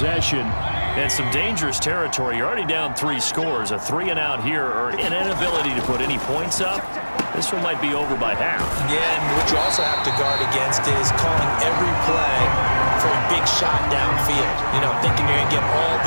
And some dangerous territory. You're already down 3 scores. A 3-and-out here, or an inability to put any points up. This one might be over by half. Yeah, and what you also have to guard against is calling every play for a big shot downfield. You know, thinking you're going to get all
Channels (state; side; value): inverted; both; correlation -1.00